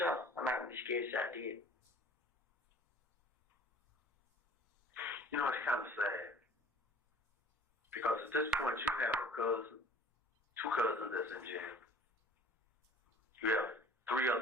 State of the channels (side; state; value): both; normal; correlation 0.49